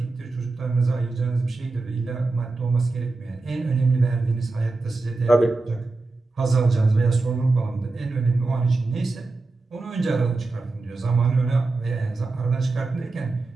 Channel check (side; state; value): left; quieter; 3.5 dB